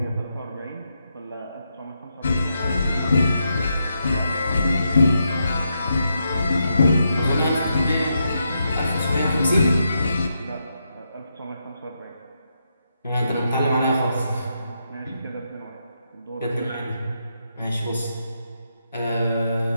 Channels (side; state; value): both; inverted; correlation -0.82